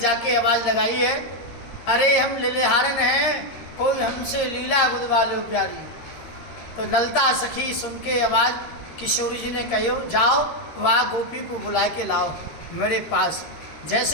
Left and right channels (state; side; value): late; right; 13 ms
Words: आवाज लगाई है, अरे हम लिलिहारन हैं, कोई हमसे लीला बुदवा लो प्यारी। तो ललता सखी सुन के आवाज किशोरी जी ने कहो, जाओ वहाँ गोपी को बुला के लाओ मेरे पास।